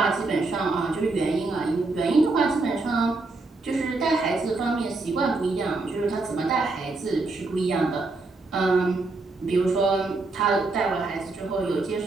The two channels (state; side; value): quieter; left; 3.5 dB